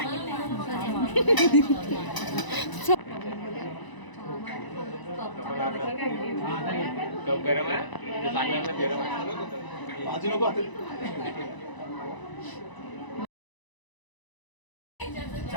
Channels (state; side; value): late; right; 1.0 ms